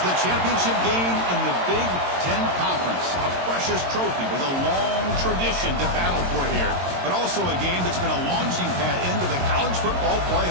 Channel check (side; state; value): left; late; 22 ms